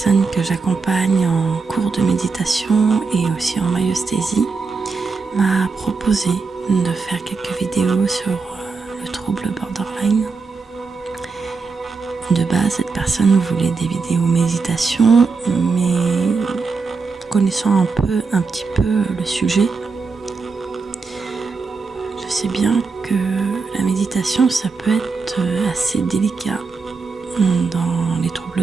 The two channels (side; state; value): left; quieter; 4.5 dB